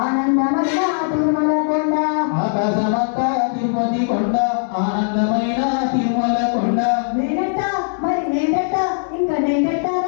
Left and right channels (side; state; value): right; silent; digital silence